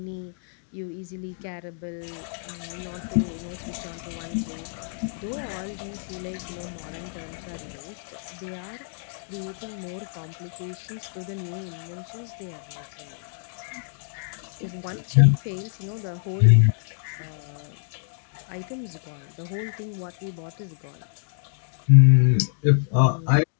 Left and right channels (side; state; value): right; silent; digital silence